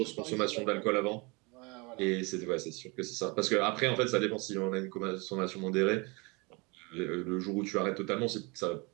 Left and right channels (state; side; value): quieter; left; 28.1 dB